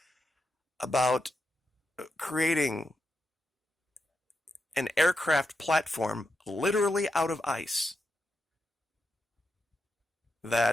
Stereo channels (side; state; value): both; normal; correlation 0.85